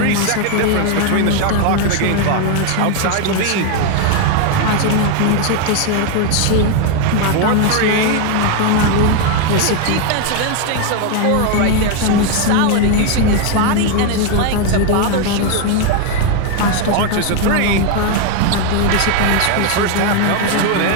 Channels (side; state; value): both; different; correlation 0.01